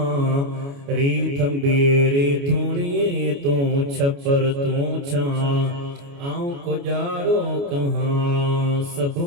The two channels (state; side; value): late; left; 29 ms